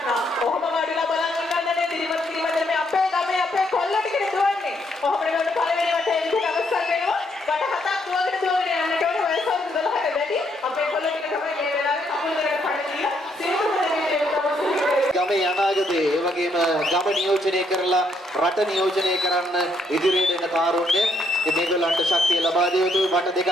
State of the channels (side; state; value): both; normal; correlation 0.73